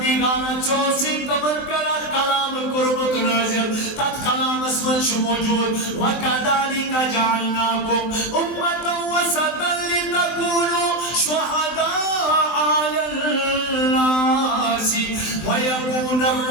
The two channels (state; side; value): late; right; 23 ms